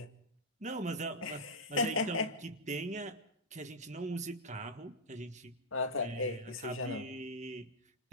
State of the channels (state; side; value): normal; both; correlation -0.06